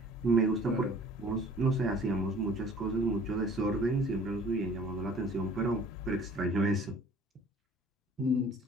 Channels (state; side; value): normal; both; correlation 0.51